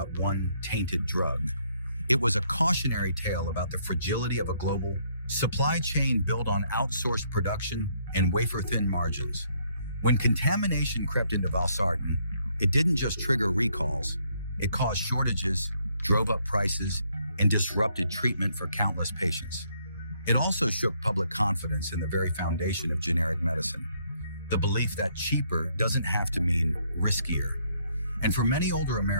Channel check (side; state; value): both; inverted; correlation -0.70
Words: one tainted drug. It was a cautionary tale about the fragility of a global supply chain built on outsourced production and wafer-thin margins. When contamination crept into valsartan, it didn't just trigger recalls. It caused shortages, drove up prices, and disrupted treatment for countless patients. It also shook public confidence in the very foundation of generic medicine, the belief that cheaper doesn't have to mean riskier. And for many older